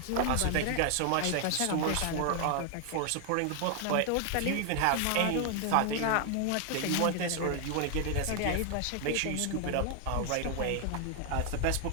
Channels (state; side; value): different; both; correlation 0.00